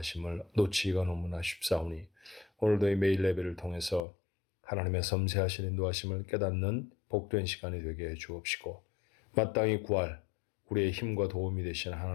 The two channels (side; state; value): right; drops out; at 4.0 s